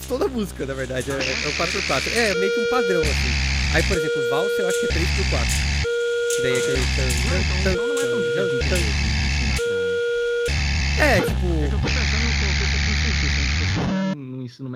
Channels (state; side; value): identical; both; correlation 1.00